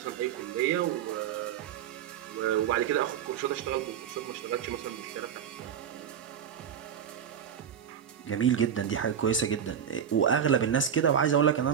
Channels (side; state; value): left; quieter; 8.5 dB